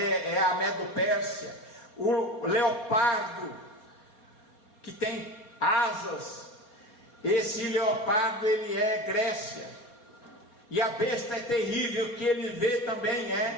a Medo-Pérsia. O leopardo que tem asas, esse leopardo ele é Grécia. E a besta é terrível que ele vê também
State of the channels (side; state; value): right; late; 4.3 ms